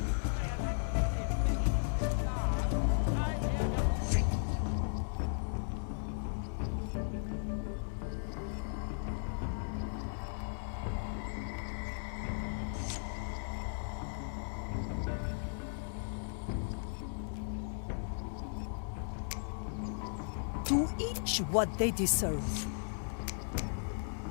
To each what they deserve.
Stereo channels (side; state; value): right; silent; digital silence